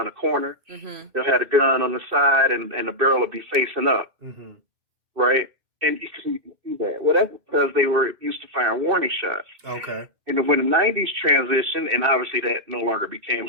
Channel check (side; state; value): left; late; 2.6 ms